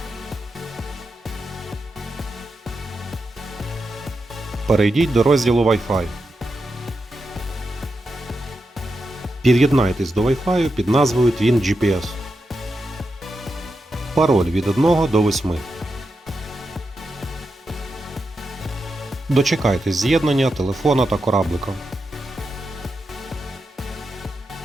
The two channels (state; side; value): normal; both; correlation 0.88